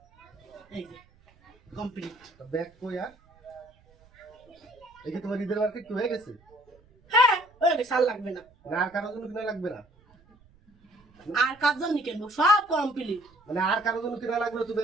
এই যে কমপ্লিট ব্যাগ কই আর? এই কি তোমার ঈদের মার্কেট কি হয়ে গেছে? হ্যাঁ ওই সাল লাগবে না, না আর কারোর জন্য কিনা লাগবে না? আর কার জন্য কিনবো, সব কমপ্লিট। মানে আর কারোর জন্য কিনা লাগবে না, তুমি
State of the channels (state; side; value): noise; right; rumble, 30 dB below the sound